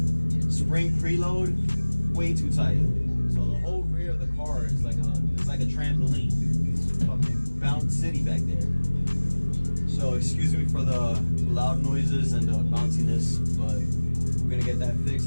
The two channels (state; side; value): inverted; both; correlation -1.00